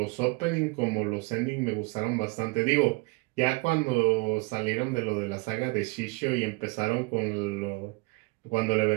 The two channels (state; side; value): quieter; left; 27.4 dB